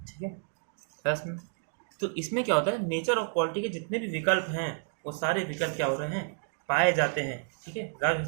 ठीक है। बस में तो इसमें क्या होता है, नेचर ऑफ पॉलिटी के जितने भी विकल्प हैं वो सारे विकल्प क्या हो रहे हैं, पाए जाते हैं, ठीक है।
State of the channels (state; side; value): silent; left; digital silence